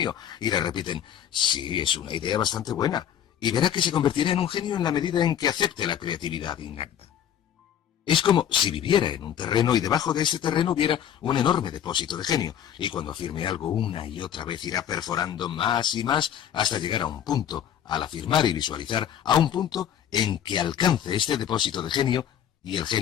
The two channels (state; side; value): quieter; right; 9.8 dB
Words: Y le repiten, sí, es una idea bastante buena. Y verá que se convertirá en un genio en la medida en que acepte la creatividad innata. Es como si viviera en un terreno y debajo de ese terreno hubiera un enorme depósito de genio. Y cuando afirme algo una y otra vez irá perforando más y más hasta llegar a un punto, al afirmar y visualizar, a un punto en que alcance este depósito de genio y el